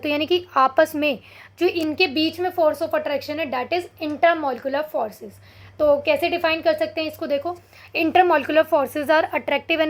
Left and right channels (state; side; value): identical; both; correlation 1.00